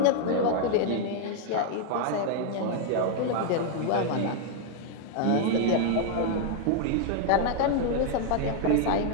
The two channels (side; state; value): both; different; correlation 0.00